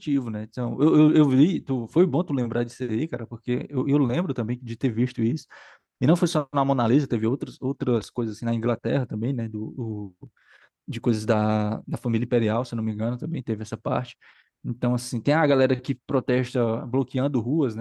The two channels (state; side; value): identical; both; correlation 1.00